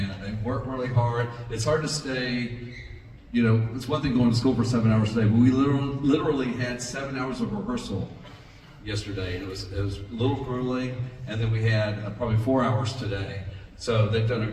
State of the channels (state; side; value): identical; both; correlation 1.00